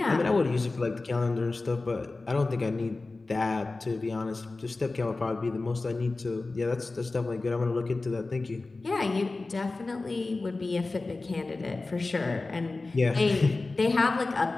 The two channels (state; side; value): quieter; right; 3.4 dB